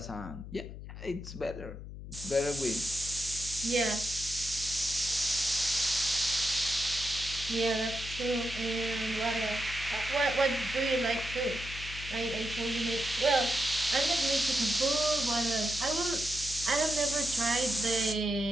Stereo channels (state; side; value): noise; left; hum, 11 dB below the sound